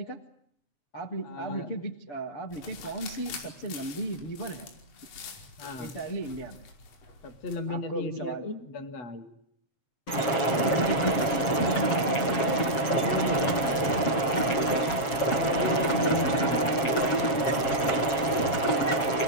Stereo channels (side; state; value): right; late; 7.4 ms